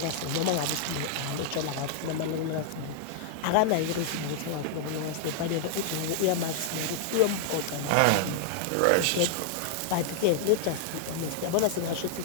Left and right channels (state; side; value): different; both; correlation 0.00